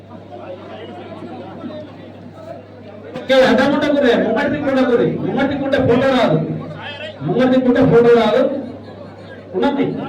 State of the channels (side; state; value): both; identical; correlation 1.00